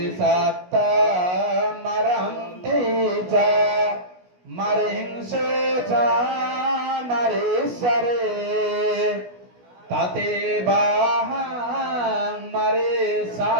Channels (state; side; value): late; left; 16 ms